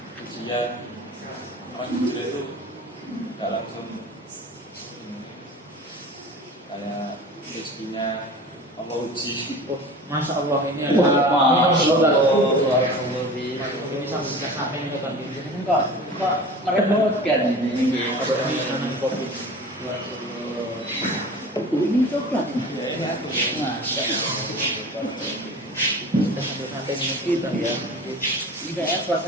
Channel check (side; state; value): both; normal; correlation 0.37